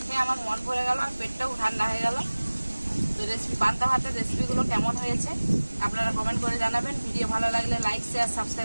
খেয়ে আমার মন ভরে গেল আর পেটটাও ঠান্ডা হয়ে গেল। তো পান্তা ভাতের রেসিপিগুলো কেমন হয়েছে আপনারা কমেন্ট করে জানাবেন। ভিডিও ভালো লাগলে লাইক, শেয়ার,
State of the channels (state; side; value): inverted; both; correlation -1.00